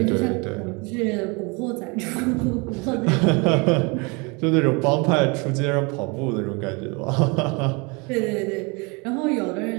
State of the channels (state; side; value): quieter; left; 29.2 dB